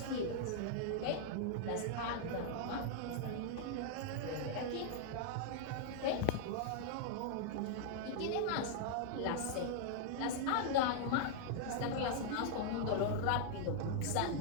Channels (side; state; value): both; different; correlation 0.00